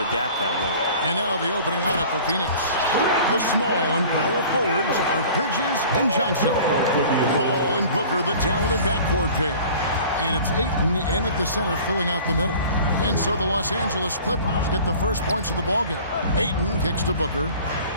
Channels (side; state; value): both; inverted; correlation -0.45